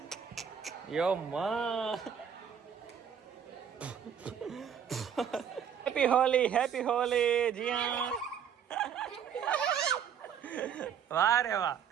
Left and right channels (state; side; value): quieter; left; 8.1 dB